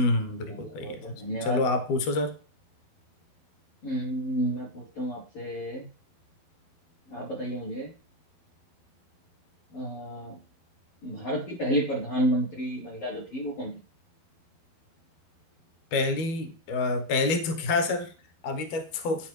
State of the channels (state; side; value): late; right; 12 ms